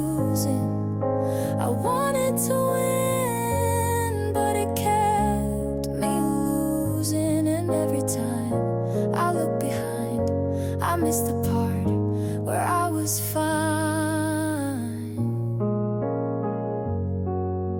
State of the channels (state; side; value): identical; both; correlation 1.00